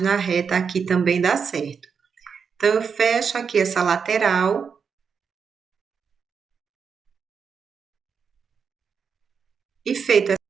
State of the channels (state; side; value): quieter; left; 6.2 dB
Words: reta aqui também dá certo. Então, eu fecho aqui essa lateral. E feito.